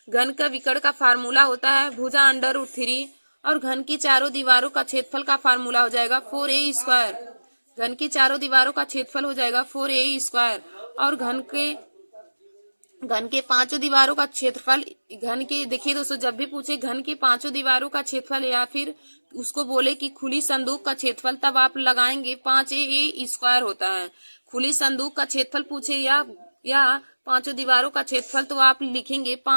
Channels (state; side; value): inverted; both; correlation -1.00